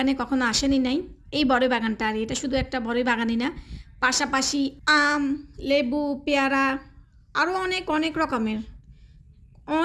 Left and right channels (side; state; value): both; identical; correlation 1.00